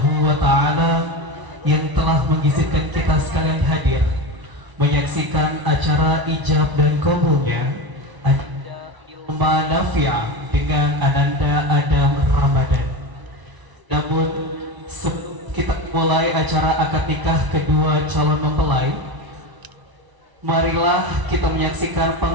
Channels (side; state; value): left; late; 1.0 ms